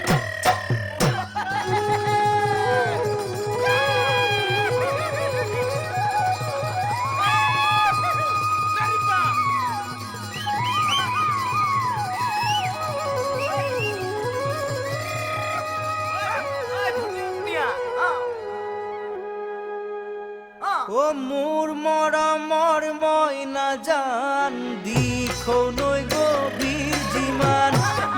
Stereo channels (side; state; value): both; identical; correlation 1.00